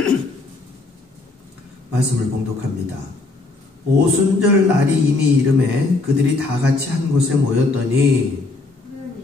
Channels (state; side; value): quieter; right; 3.3 dB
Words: 말씀을 봉독합니다. 오순절 날이 이미 이름에 그들이 다 같이 한 곳에 모였더니